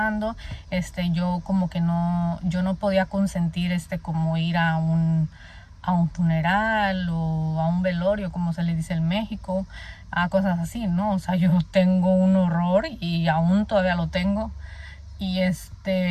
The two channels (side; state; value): both; identical; correlation 1.00